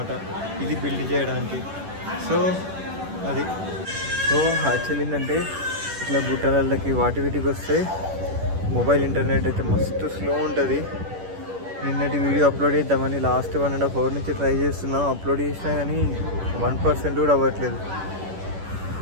ఇది బిల్డ్ చేయడానికి. సో అది సో యాక్చువల్ ఏంటంటే ఇట్లా బుట్టలకి వీటికి వస్తే మొబైల్ ఇంటర్నెట్ అయితే మస్తు స్లో ఉంటుంది. నిన్నటి వీడియో అప్లోడ్ చేద్దామని లాస్ట్ 1.5 hour నుంచి ట్రై చేస్తున్నాం. అప్లోడ్ చేసినా కానీ 1% కూడా అవ్వట్లేదు.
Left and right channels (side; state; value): left; late; 10 ms